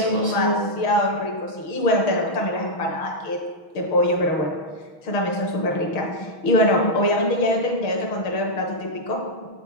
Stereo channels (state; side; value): late; right; 6.2 ms